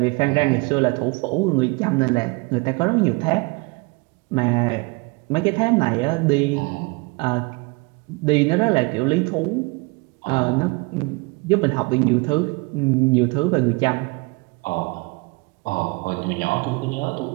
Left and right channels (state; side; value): quieter; left; 27.8 dB